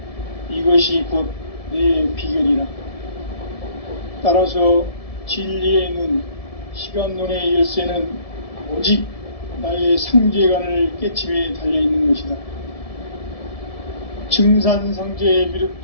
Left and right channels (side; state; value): right; late; 1.7 ms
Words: 이것이 곧 내 비결이라. 따라서 진리의 문, 시간론의 열쇠는 오직 나의 상제관을 깨침에 달려있는 것이다. 증산상제